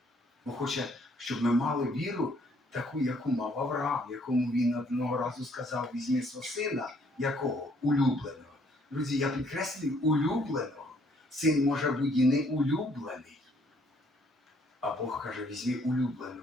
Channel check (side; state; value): both; normal; correlation 0.65